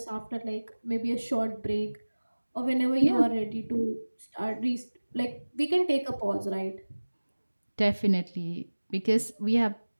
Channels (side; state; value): both; inverted; correlation -1.00